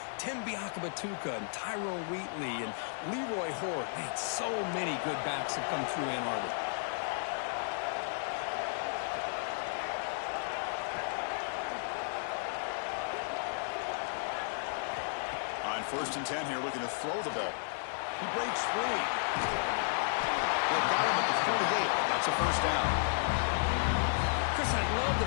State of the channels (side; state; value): right; silent; digital silence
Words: Tim Biakabatuka and Tyrone Wheatley and Leroy Hort. Man, so many good backs have come through Ann Arbor. On 1st and 10 here, looking to throw the ball. He breaks free. They've got him at the 48, but that's a first down. Chris, I love